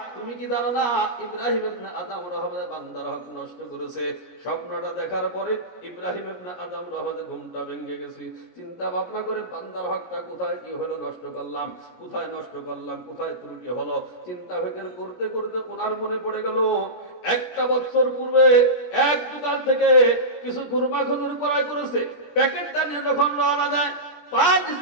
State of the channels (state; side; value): late; right; 17 ms